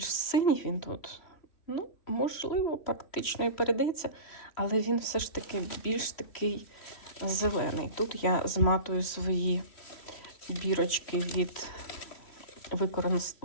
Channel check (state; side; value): late; right; 3.1 ms